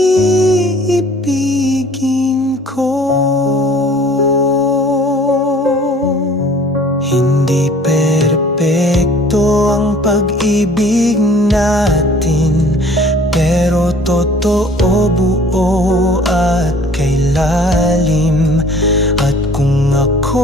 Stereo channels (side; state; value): both; normal; correlation 0.51